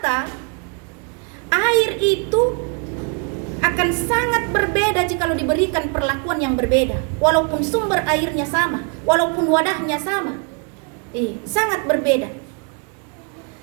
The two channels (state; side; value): quieter; left; 36.3 dB